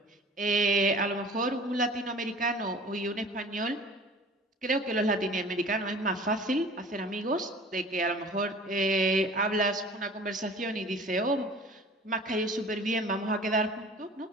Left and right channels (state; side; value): normal; both; correlation 0.44